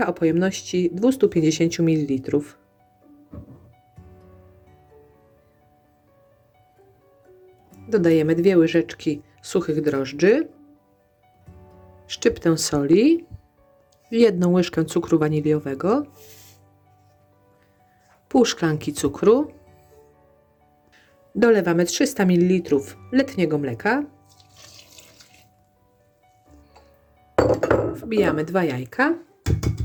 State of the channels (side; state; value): both; identical; correlation 1.00